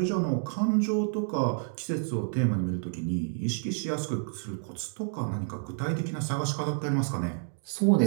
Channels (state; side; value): silent; left; digital silence